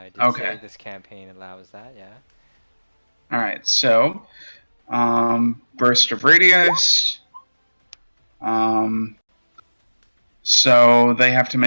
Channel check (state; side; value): inverted; both; correlation -1.00